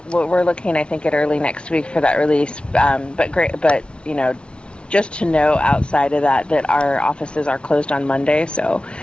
we're looking, I think, at early next week for that release. But just to know outside of that our offices are closed on Monday. So,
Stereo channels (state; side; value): late; right; 0.057 ms